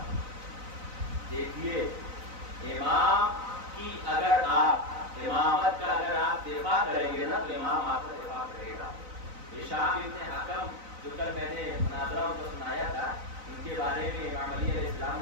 دیکھیے امام کی اگر آپ امامت کا اگر آپ دفاع کریں گے نا تو امام آپ کا دفاع کرے گا. ہشام ابن حکم جو کل میں نے مناظرہ کو سنایا تھا ان کے بارے میں امام علی علیہ السلام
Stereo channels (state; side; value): late; left; 4.0 ms